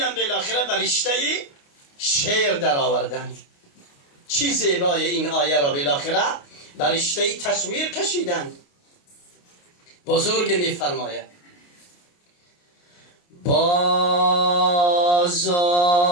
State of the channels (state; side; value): late; right; 28 ms